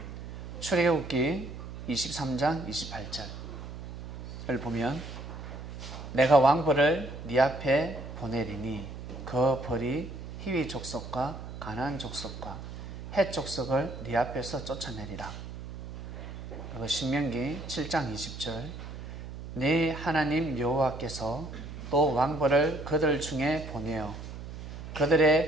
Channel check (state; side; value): noise; right; hum, 10 dB below the sound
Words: 출애굽기 23장 28절을 보면 내가 왕벌을 네 앞에 보내리니 그 벌이 히위 족속과 가나안 족속과 헷 족속을 네 앞에서 쫓아내리라. 그리고 신명기 7장 20절 네 하나님 여호와께서 또 왕벌을 그들 중에 보내어